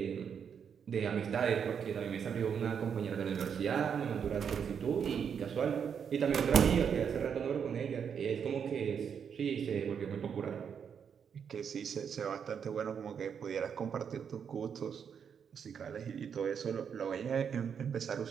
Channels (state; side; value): quieter; left; 7.3 dB